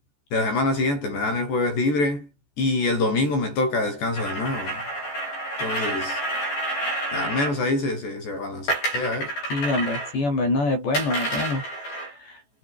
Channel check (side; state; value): right; late; 14 ms